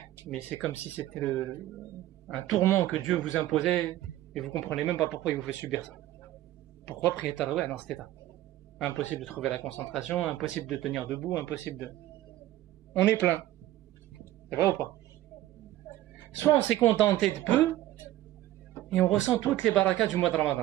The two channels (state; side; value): quieter; left; 14.7 dB